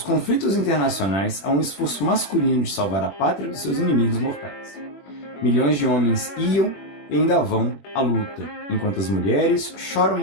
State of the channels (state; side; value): late; right; 21 ms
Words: conflitos internacionais a um esforço masculino de salvar a pátria dos seus inimigos mortais. Milhões de homens iam e ainda vão à luta, enquanto as mulheres choram